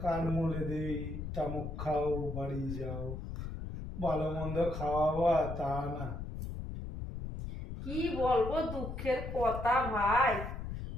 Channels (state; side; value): noise; left; rumble, 6 dB below the sound